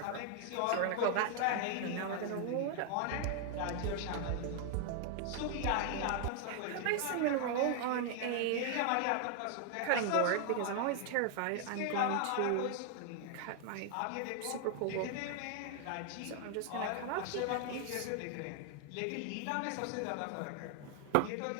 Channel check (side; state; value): both; different; correlation 0.00